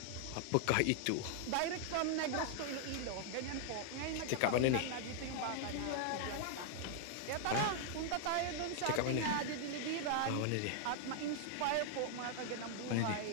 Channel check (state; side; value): different; both; correlation -0.01